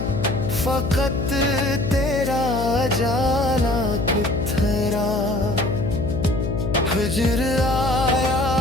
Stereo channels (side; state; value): left; noise; hum, 3 dB below the sound